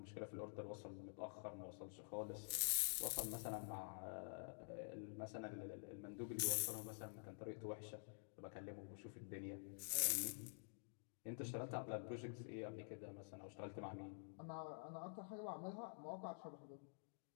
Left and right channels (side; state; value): right; silent; digital silence